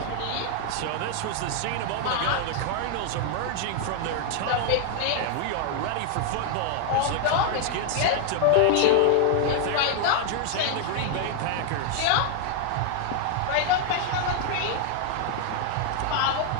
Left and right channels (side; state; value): both; different; correlation 0.00